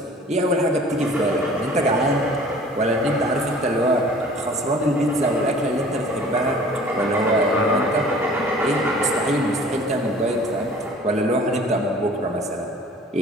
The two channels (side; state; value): both; normal; correlation 0.48